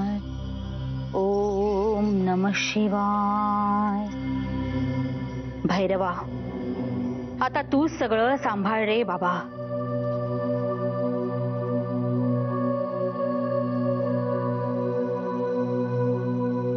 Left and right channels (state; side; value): identical; both; correlation 1.00